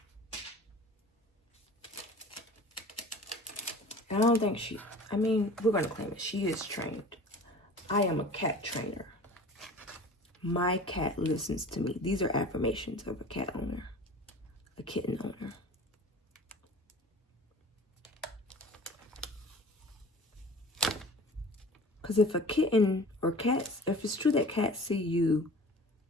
I don't think she, I mean, we're going to claim it. She is trained. I am a cat trainer. My cat listens to me. These are affirmations of a cat owner, a kitten owner. Because if a kitten or cats, if it's true that cats see you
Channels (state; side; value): normal; both; correlation 0.41